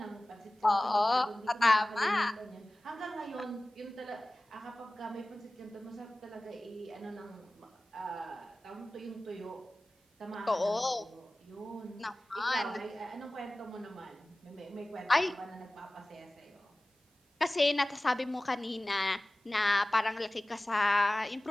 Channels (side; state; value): both; normal; correlation 0.97